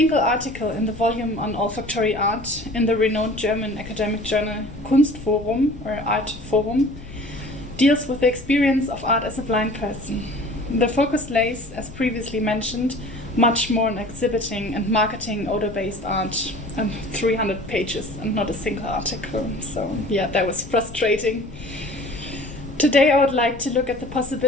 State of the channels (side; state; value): left; noise; rumble, 15 dB below the sound